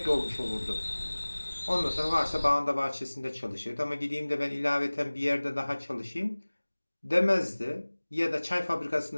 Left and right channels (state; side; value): inverted; both; correlation -1.00